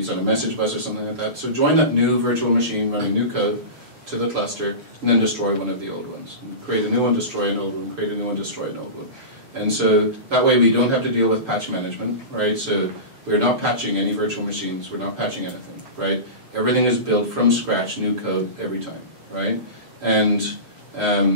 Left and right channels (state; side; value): late; left; 6.8 ms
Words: on a message bus or something like that. So join that new virtual machine running new code to the cluster, and then destroy one of the old ones. And create a new one, destroy an old one, create a new one, destroy an old one. And so that way we don't have to deal with patch management, right? So we're not patching any virtual machines, we're not patching anything, right? Everything is built from scratch, new code every time, right? And